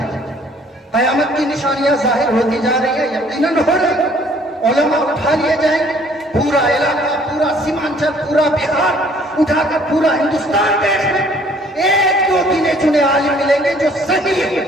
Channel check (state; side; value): normal; both; correlation 0.58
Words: ہیں؟ قیامت کی نشانیاں ظاہر ہوتی جا رہی ہیں، یقیناً ہو رہی ہیں. علماء اٹھا لیے جائیں گے، پورا علاقہ، پورا سیمانچل، پورا بہار اٹھا کر پورا ہندوستان دیکھ لیں. ایک دو گنے چنے عالم ملیں گے جو صحیح